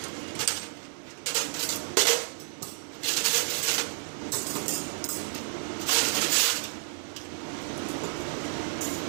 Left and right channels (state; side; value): silent; left; digital silence